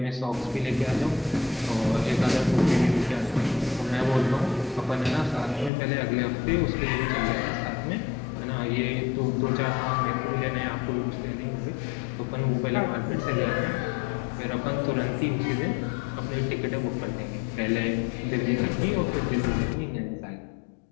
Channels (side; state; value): right; drops out; at 5.7 s